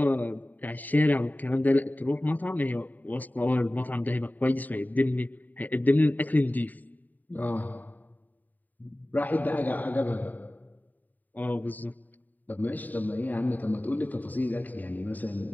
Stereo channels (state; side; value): late; right; 0.084 ms